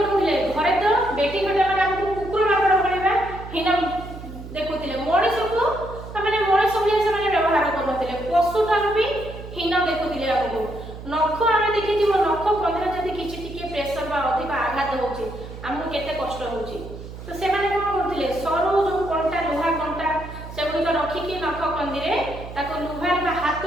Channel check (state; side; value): noise; right; hum, 12 dB below the sound